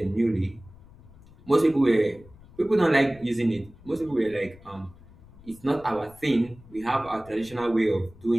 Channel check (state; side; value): noise; left; rumble, 23 dB below the sound